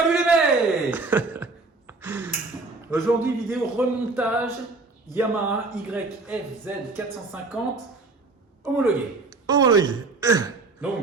les mecs. Aujourd'hui, vidéo remontage Yamaha YFZ 450 homologué. Homologué.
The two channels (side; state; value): left; quieter; 3.6 dB